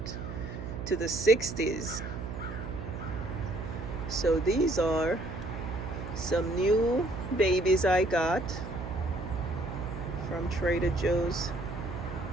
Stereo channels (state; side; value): noise; right; hum, 8 dB below the sound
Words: to the 60s. So these are some new babies I got from Trader Joe's.